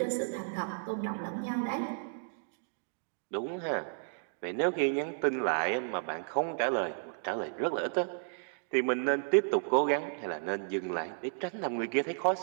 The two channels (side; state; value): left; silent; digital silence